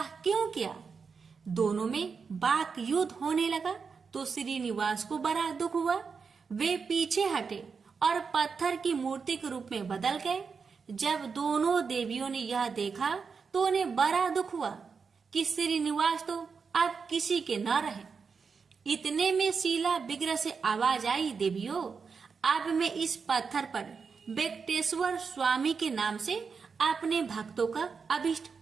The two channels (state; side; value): quieter; left; 5.5 dB